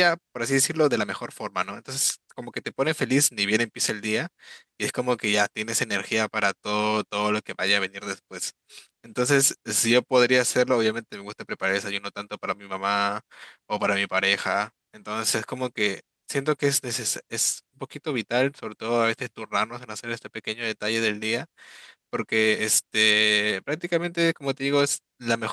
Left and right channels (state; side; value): identical; both; correlation 1.00